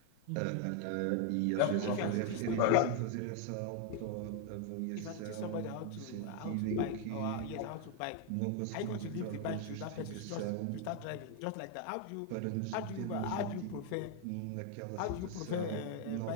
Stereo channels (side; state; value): both; different; correlation 0.00